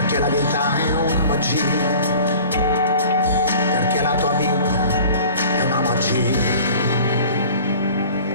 la vita è una magia, perché la tua vita è una magia.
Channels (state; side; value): inverted; both; correlation -0.45